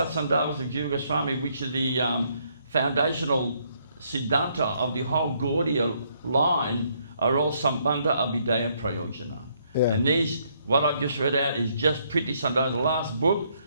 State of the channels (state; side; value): inverted; both; correlation -0.71